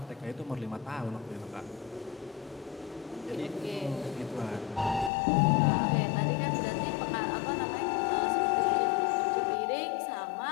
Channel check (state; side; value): drops out; right; at 5.1 s